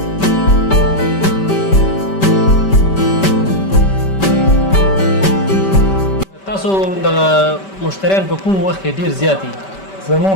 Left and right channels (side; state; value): right; late; 5.2 ms